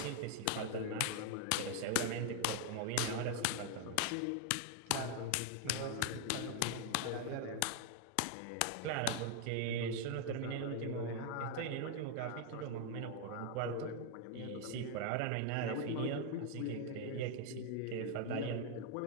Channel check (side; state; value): both; different; correlation 0.00